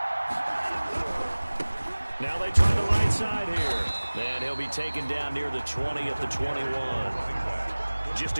Now they try the right side here. And he'll be taken down near the 20 at the 21. Just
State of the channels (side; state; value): both; inverted; correlation -1.00